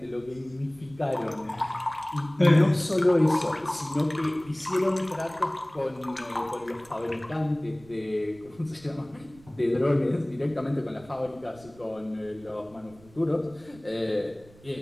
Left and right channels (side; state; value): right; noise; rumble, 24 dB below the sound